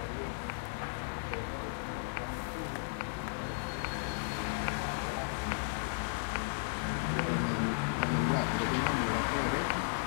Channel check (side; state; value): right; silent; digital silence